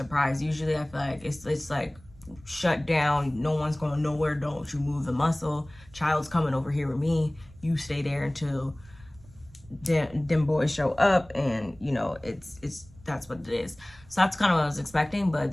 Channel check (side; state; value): right; noise; rumble, 23 dB below the sound